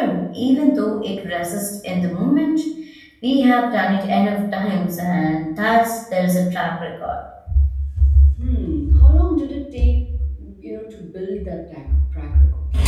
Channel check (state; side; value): identical; both; correlation 1.00